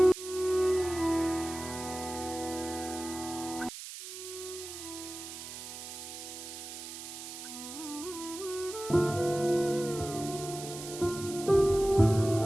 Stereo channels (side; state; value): right; noise; hiss, 10 dB below the sound